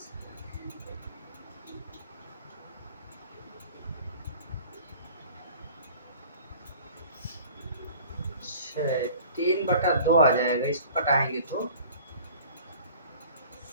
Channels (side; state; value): both; inverted; correlation -0.47